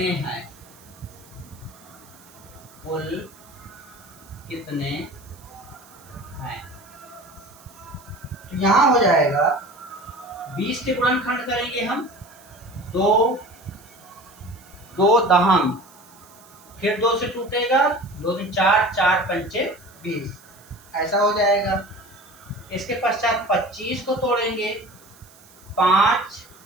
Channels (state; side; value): noise; right; hiss, 25 dB below the sound